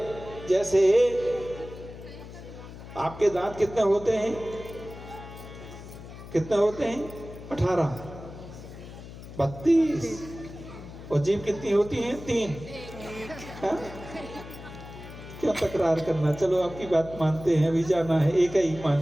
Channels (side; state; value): left; noise; hum, 14 dB below the sound